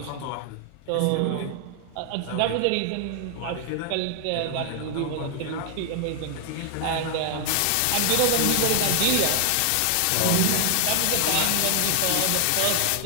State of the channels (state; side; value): different; both; correlation 0.00